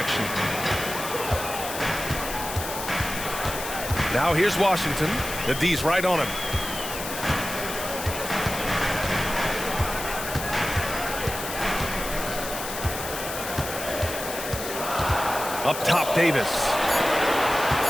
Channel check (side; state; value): left; noise; hiss, 7 dB below the sound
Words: Now here's Washington. The D's right on him. Up top, Davis.